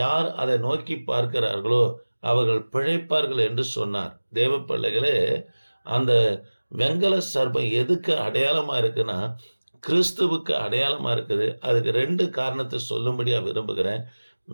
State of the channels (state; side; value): inverted; both; correlation -1.00